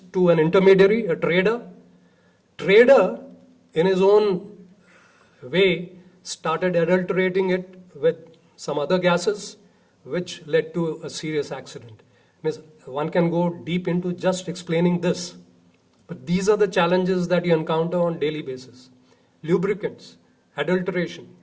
to an intermediary, a trader, trader, in his own way, started adulterating it with some other gases, which led to a serious accident. Means one can go deep into just explaining this. But these are the challenges that you encounter on daily basis. Lubricants, adulteration.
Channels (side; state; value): both; identical; correlation 1.00